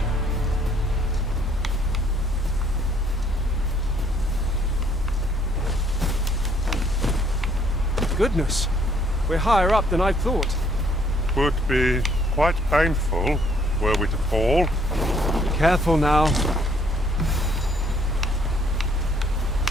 Goodness, we're higher up than I thought. Would be quite painful were we to fall. Careful now.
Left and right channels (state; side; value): normal; both; correlation 0.64